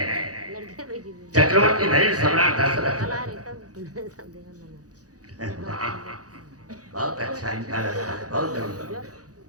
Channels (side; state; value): left; late; 0.67 ms